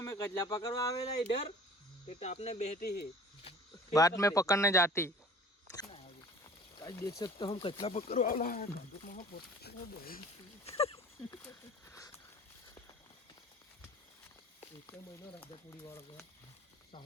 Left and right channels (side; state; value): both; normal; correlation 0.45